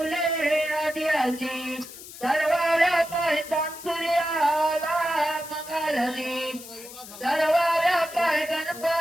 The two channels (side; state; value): left; noise; hiss, 15 dB below the sound